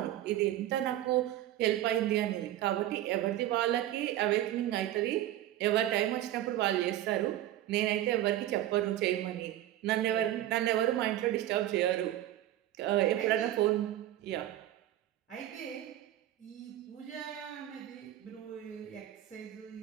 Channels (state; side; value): quieter; left; 13.4 dB